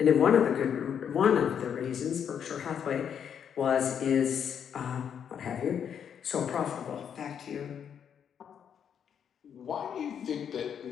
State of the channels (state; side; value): quieter; right; 8.1 dB